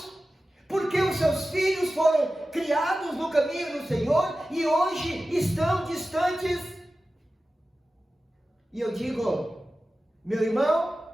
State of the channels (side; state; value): both; normal; correlation 0.94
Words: porque os seus filhos foram criados no caminho do Senhor e hoje estão distantes. E eu digo: meu irmão,